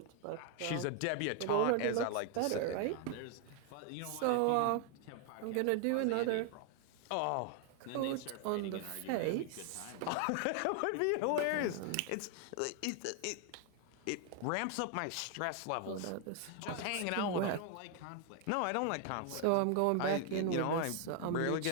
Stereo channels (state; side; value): different; both; correlation 0.00